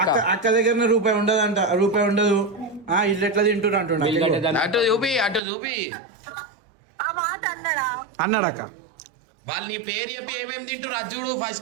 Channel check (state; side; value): drops out; left; at 5.4 s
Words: అక్క దగ్గర రూపాయి ఉండదంట, రూపాయి ఉండదు. ఇల్లు ఎట్లా తింటున్నా అంటున్నా. అటు చూపి ఆ మాట అన్నాడా? అన్నాడు అక్క. వాళ్ళు నీ పేరు చెప్పి ఏమేమి తింటారు అది చూడు